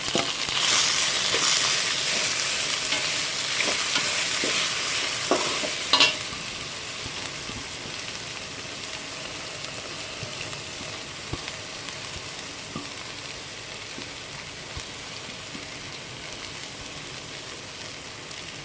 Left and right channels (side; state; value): both; identical; correlation 1.00